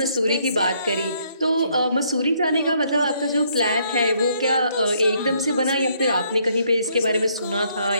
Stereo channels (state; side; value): inverted; both; correlation -0.69